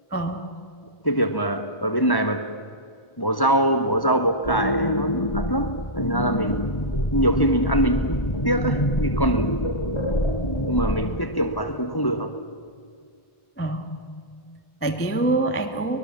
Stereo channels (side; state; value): right; late; 1.1 ms